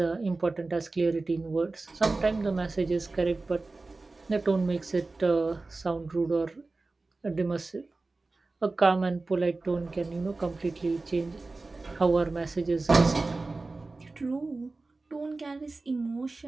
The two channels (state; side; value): quieter; left; 3.4 dB